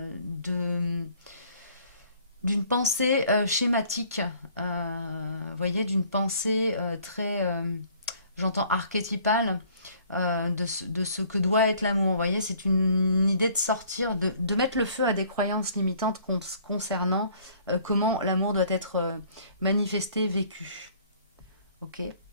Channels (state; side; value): inverted; both; correlation -0.57